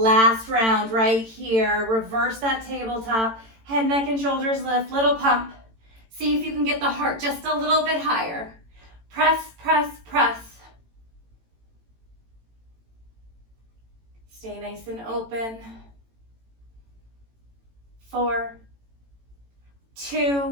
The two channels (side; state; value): left; late; 18 ms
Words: round right here. Reverse that tabletop. Head, neck, and shoulders lift. Little pump. See if you can get the heart just a little bit higher. Press, press, press. Stay nice and open. 4,